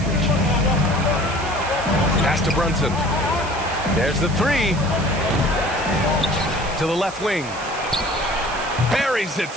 Pass to Brunson. There's the three. To the left wing. Buries it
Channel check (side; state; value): right; noise; hiss, 15 dB below the sound